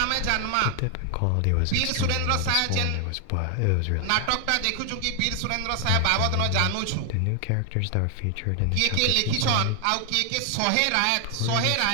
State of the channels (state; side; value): different; both; correlation 0.00